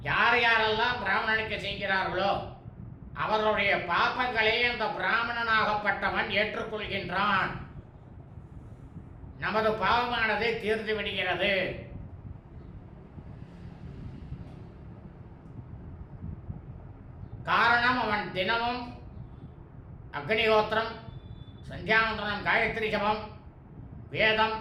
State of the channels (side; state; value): both; identical; correlation 1.00